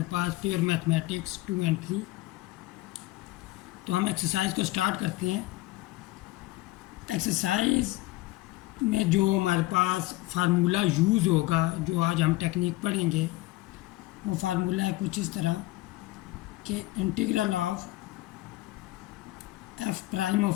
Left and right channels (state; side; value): quieter; right; 18.8 dB